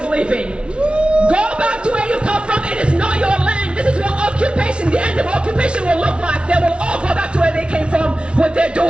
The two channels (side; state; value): left; late; 0.058 ms